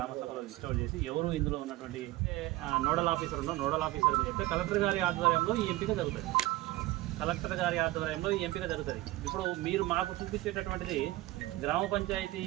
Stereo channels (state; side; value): quieter; left; 18.2 dB